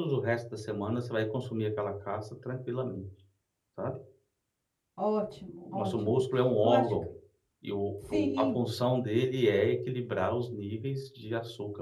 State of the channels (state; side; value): identical; both; correlation 1.00